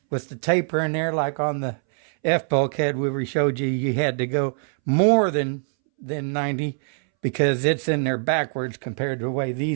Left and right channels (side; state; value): left; silent; 63 dB below the other